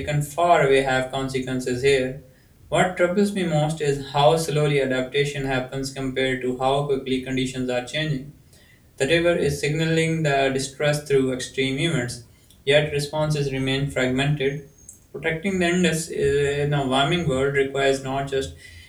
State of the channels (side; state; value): both; identical; correlation 1.00